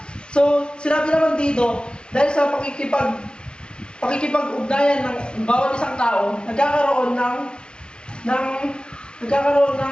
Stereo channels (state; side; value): late; right; 0.051 ms